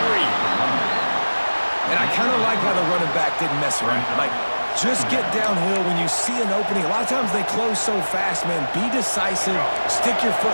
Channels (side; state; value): both; inverted; correlation -1.00